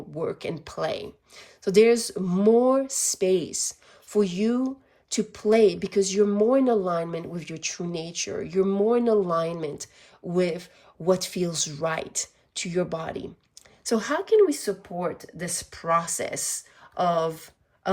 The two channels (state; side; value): identical; both; correlation 1.00